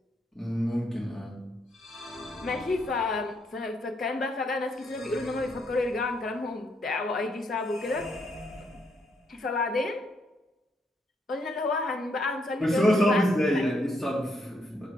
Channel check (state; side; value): normal; both; correlation 0.75